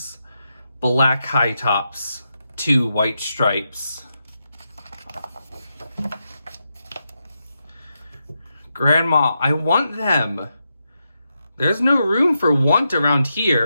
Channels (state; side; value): inverted; both; correlation -0.86